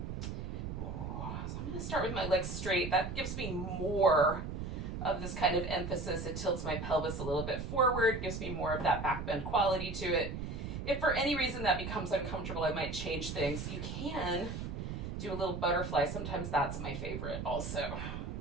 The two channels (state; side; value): noise; right; rumble, 5 dB below the sound